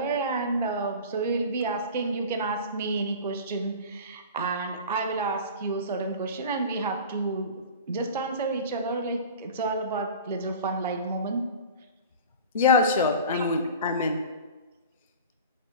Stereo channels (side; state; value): both; inverted; correlation -0.36